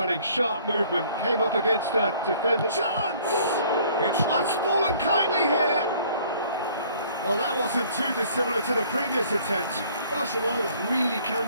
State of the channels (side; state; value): both; inverted; correlation -0.56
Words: sharp movement. Came up against a defender. Chance! It's fallen kindly here. Well, that wasn't too dissimilar to the previous attempt. Barcelona really can